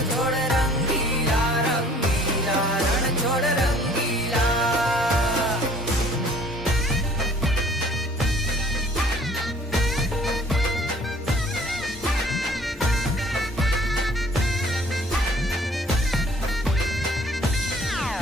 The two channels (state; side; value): normal; both; correlation 0.54